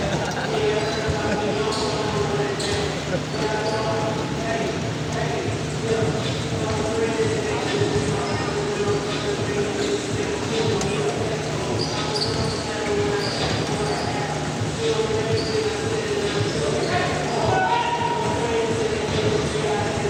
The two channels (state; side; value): identical; both; correlation 1.00